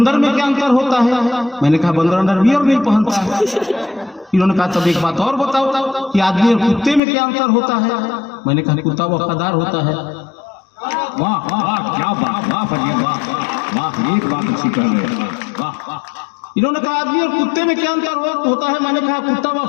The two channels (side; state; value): right; drops out; at 7.0 s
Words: में क्या अंतर होता है? मैंने कहा बंदर अंडरवियर नहीं पहनता है। इन्होंने कहा तब एक बात और बताओ कि आदमी और कुत्ते में क्या अंतर होता है? मैंने कहा कुत्ता वफादार होता है। वाह वाह, क्या बात, वाह फजीर, वाह वाह, एक बात अच्छी कर रहे हैं, वाह वाह। इन्होंने कहा आदमी और कुत्ते में क्या अंतर होता है? मैंने कहा कुत्ता